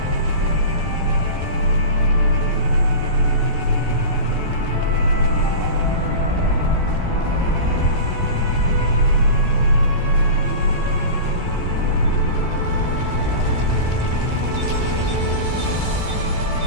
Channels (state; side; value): late; left; 14 ms